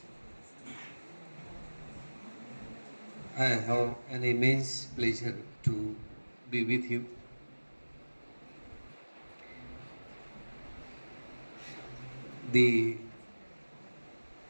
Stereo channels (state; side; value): inverted; both; correlation -1.00